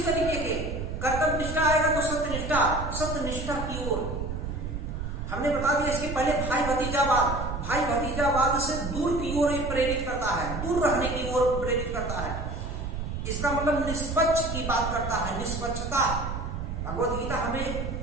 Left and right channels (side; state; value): right; noise; rumble, 5 dB below the sound